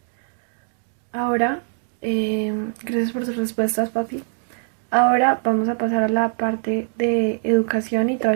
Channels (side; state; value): left; silent; digital silence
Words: Ahora, gracias por tus respuestas, papi. Ahora vamos a pasar a la parte de educación y